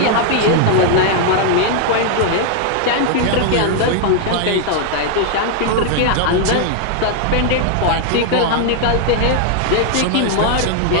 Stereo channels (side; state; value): both; different; correlation 0.00